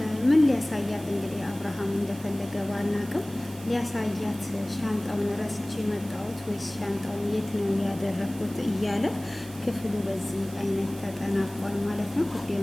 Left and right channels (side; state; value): right; noise; hiss, 18 dB below the sound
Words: ምን ሊያሳያት እንግዲህ አብርሃም እንደፈለገ ባናቅም ሊያሳያት ሻንጣውን ረስቼ መጣሁት ወይስ ሻንጣውን የት ነው ያደረኩት እያለ ክፍሉ በዚህ አይነት ተጠናቋል ማለት ነው። ውድ